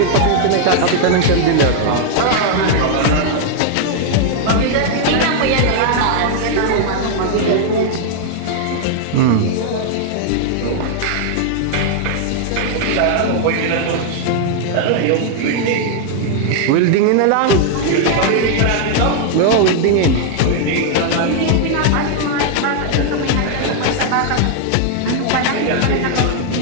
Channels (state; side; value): different; both; correlation 0.00